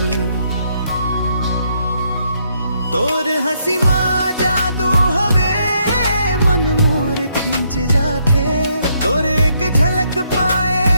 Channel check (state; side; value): inverted; both; correlation -0.73